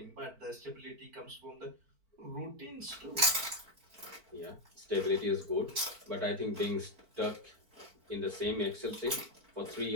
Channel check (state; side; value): late; left; 4.5 ms